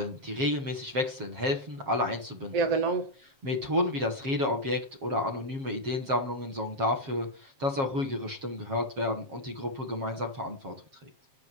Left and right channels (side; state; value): left; late; 7.4 ms